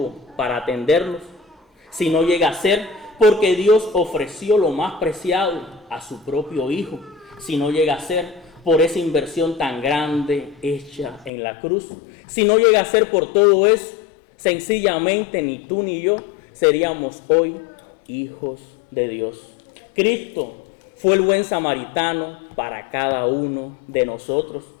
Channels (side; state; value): right; drops out; at 11.3 s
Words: para atendernos, si no llega a ser porque Dios ofreció lo más preciado a su propio Hijo, si no llega a ser por esa inversión tan grande hecha en la cruz, si no llega a ser por todo eso, sencillamente ni tú ni yo seríamos hoy hijos de Dios. Cristo fue el buen samaritano para cada uno de nosotros